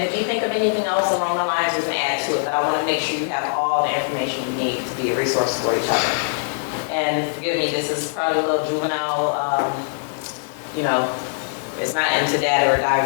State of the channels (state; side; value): silent; right; digital silence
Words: if you think of anything else along the lines, we can add to it, but I want to make sure you have all the information you need to be a resource for each other. And forgive me, this is probably a little juvenile, it's not into data or